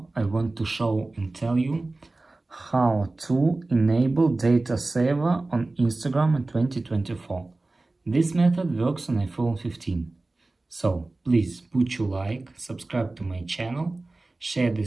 I want to show and tell you how to enable data saver on Instagram in 2024. This method works on iPhone 15. So please put your like, subscribe to my channel, share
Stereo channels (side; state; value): left; quieter; 3.1 dB